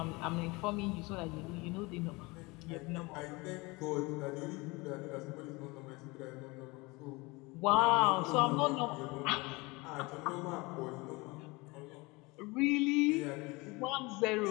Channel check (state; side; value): quieter; right; 24.7 dB